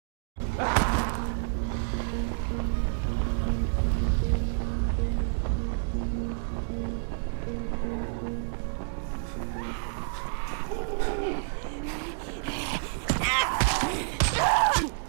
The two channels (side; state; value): left; silent; digital silence